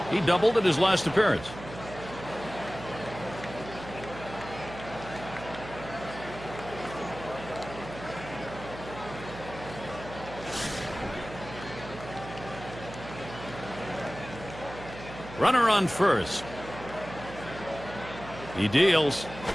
He doubled at his last appearance. Runner on first. He deals.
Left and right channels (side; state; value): right; noise; hum, 13 dB below the sound